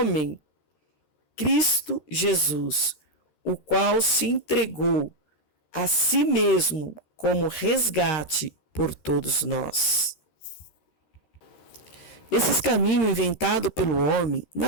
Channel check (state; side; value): late; right; 13 ms